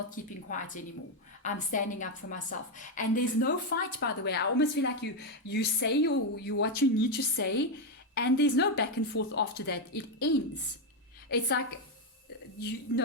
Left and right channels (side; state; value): both; normal; correlation 0.05